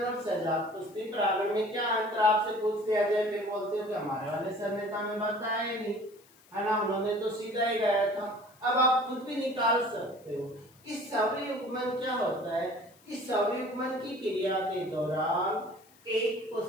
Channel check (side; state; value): left; noise; hiss, 28 dB below the sound